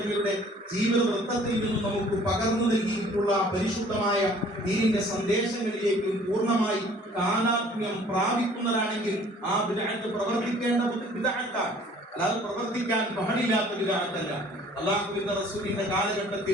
ജീവിത വൃത്തത്തിൽ നിന്നും നമുക്ക് പകർന്നു നൽകിയിട്ടുള്ള പരിശുദ്ധമായ ദീനിന്റെ സന്ദേശങ്ങളിലേക്കും പൂർണ്ണമായി താനാത്മ്യം പ്രാപിക്കുന്നതാണെങ്കിൽ ആ ബിദ്അത്ത് പ്രവർത്തിക്കേണ്ട ബിദ്അത്താണ്, അല്ലാതെ പ്രവർത്തിക്കാൻ പാടില്ലാത്ത ബിദ്അത്തല്ല. അല്ലാഹുവിന്റെ റസൂലിന്റെ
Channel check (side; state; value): both; normal; correlation 0.54